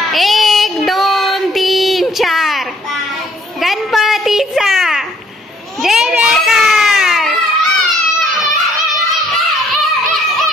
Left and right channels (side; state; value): both; normal; correlation 0.63